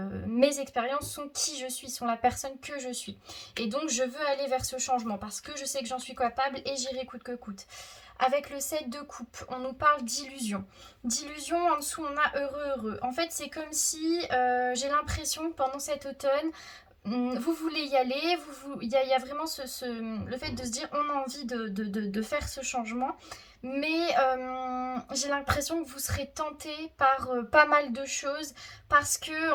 mes expériences sont qui je suis, sont la personne que je suis. Et donc je veux aller vers ce changement parce que je sais que j'en suis capable et j'irai coûte que coûte. Avec le 7 de coupe, on nous parle d'illusion. D'illusion, en dessous on a heureux. En fait c'est comme si j'ai l'impression que pendant cet automne, vous voulez y aller, il y a vraiment le fait de se dire on a envie de faire ce changement, mais j'ai l'impression que vous serez tenté par pas mal de choses, parce que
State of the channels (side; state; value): both; identical; correlation 1.00